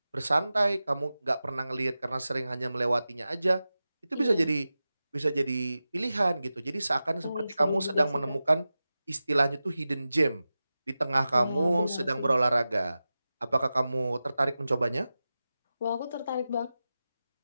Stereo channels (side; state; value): both; inverted; correlation -0.94